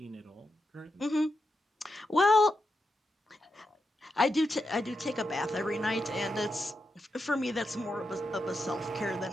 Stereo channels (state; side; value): normal; both; correlation 0.86